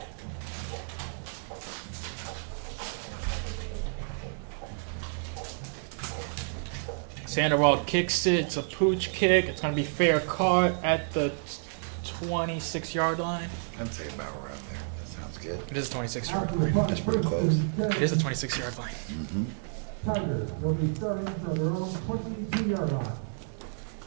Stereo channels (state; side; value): silent; left; digital silence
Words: Sandoval kicks it. It's a pooch kick. It's going to be fair caught at the 26-yard line. I'd say about around there. That sounds good. It is a 26-yard After the line. punt, That's pretty first close. and It is a 10, 26-yard line. Tigers will be starting from their own 22-yard line.